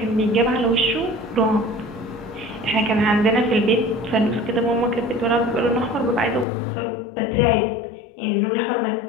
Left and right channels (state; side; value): drops out; right; at 6.5 s